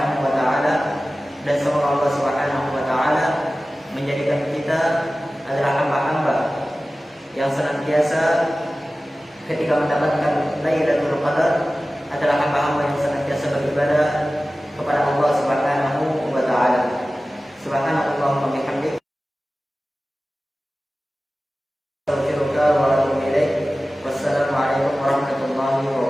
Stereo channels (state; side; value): normal; both; correlation 0.96